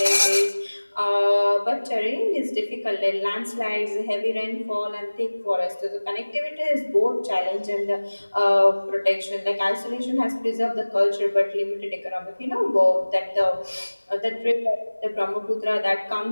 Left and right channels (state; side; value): inverted; both; correlation -1.00